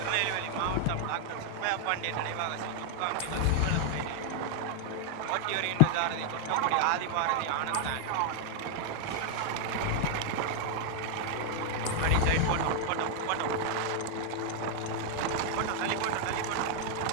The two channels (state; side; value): different; both; correlation 0.00